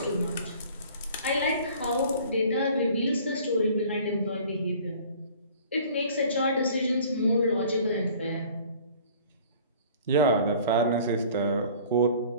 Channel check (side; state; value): both; inverted; correlation -0.49